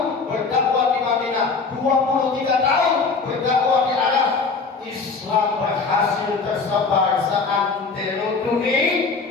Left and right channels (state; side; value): quieter; right; 4.6 dB